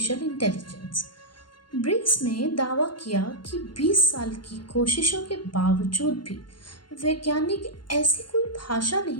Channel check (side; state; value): right; late; 0.71 ms